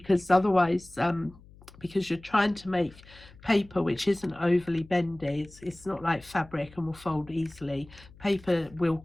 otherwise because you're trying to make paper which isn't overly bendy. It's not like fabric and will fold easily. Paper will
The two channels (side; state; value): left; noise; hum, 23 dB below the sound